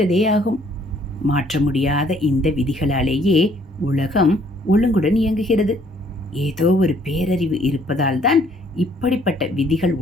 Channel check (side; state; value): both; normal; correlation 0.62